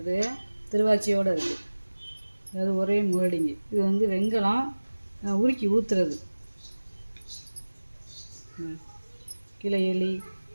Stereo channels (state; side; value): inverted; both; correlation -1.00